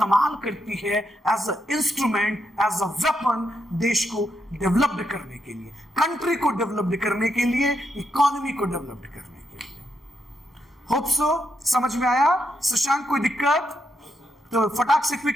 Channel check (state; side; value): normal; both; correlation 0.81